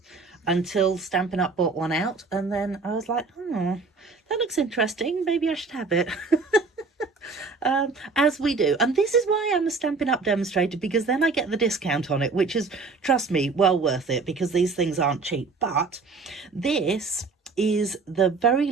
until Stampin' Up bought one out, and then I was like, oh, that looks interesting. Maybe I should have it. As we do. And this is why I'm a Stampin' Up demonstrator, because then I get the discount on it, which is, trust me, well worth it, because these things aren't cheap. But this is the very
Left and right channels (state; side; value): quieter; left; 4.2 dB